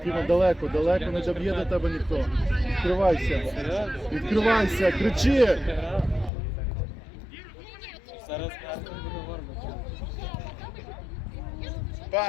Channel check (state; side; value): drops out; right; at 6.3 s